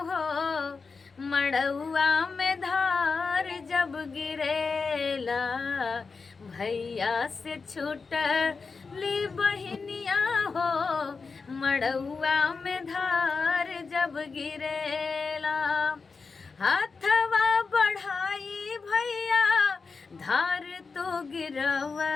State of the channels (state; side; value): quieter; right; 4.7 dB